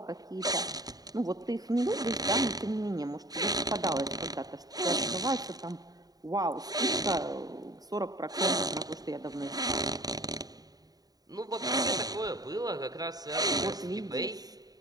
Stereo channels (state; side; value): late; left; 0.18 ms